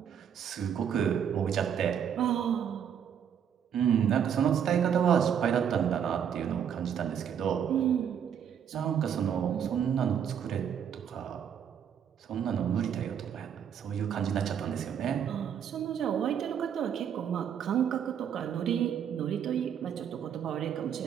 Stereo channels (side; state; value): left; quieter; 8.4 dB